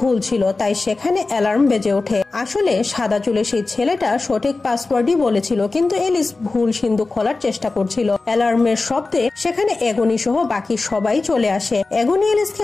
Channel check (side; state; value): right; quieter; 3.6 dB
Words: ভুল ছিল, তাই সেখানে অ্যালার্ম বেজে ওঠে। আসলে সাদা চুলের সেই ছেলেটা সঠিক পাসওয়ার্ডই বলেছিল, কিন্তু এলিস ভুল সিন্দুক খোলার চেষ্টা করছিল। অ্যালার্মের শব্দে সেখানে এগনি সহ বাকি সবাই চলে আসে। এগনি